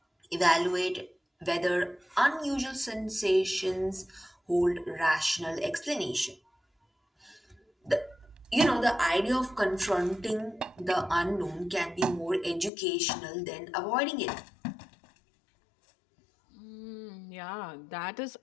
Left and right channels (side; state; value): right; drops out; at 12.7 s